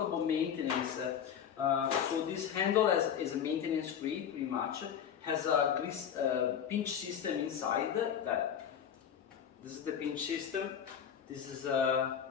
about maintenance. So this handle is a maintenance free, pretty much. Has a pinch system inside. That this is the pinch system. This is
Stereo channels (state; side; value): quieter; right; 8.5 dB